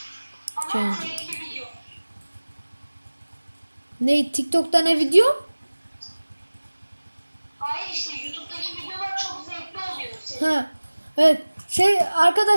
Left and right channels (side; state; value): both; inverted; correlation -1.00